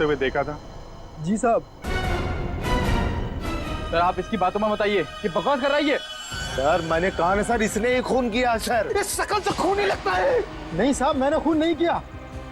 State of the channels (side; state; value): both; identical; correlation 1.00